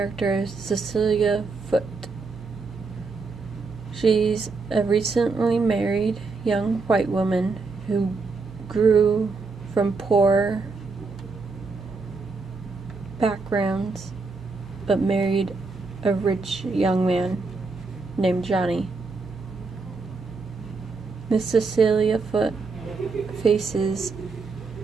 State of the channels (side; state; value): left; quieter; 4.2 dB